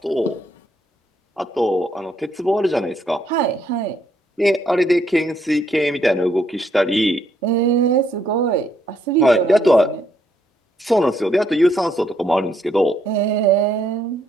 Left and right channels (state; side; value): normal; both; correlation 0.72